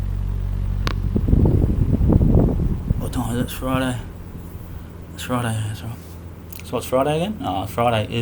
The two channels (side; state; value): both; identical; correlation 1.00